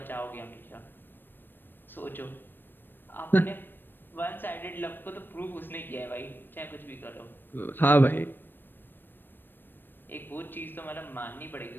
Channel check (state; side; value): late; right; 0.095 ms